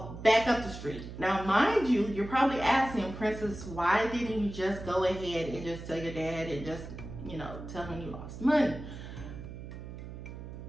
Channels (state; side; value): noise; right; hum, 11 dB below the sound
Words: back up the street. Now, mind you, you're probably asking, Princess, why didn't you just go ahead and just tell your dad and just, you know, tell him you lost money?